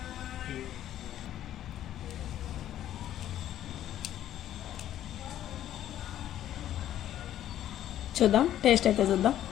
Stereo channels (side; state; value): right; quieter; 11.8 dB